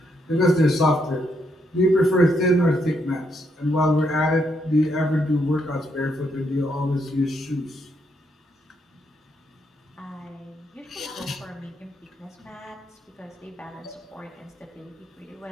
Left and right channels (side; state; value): both; normal; correlation 0.77